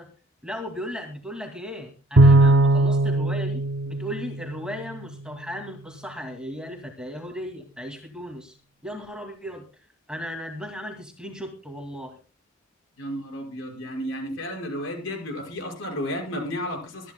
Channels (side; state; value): both; normal; correlation 0.58